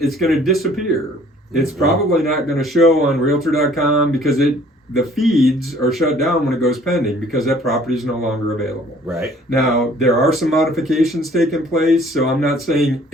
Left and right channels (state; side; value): normal; both; correlation 0.56